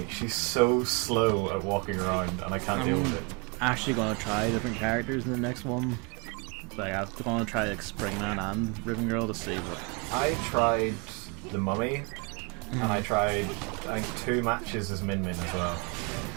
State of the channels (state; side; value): quieter; left; 32.6 dB